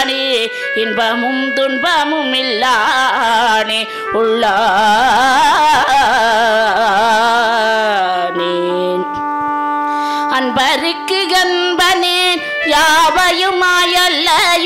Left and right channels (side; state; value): both; identical; correlation 1.00